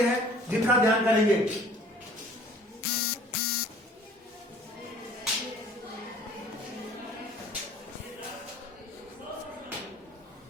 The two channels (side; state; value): both; normal; correlation 0.51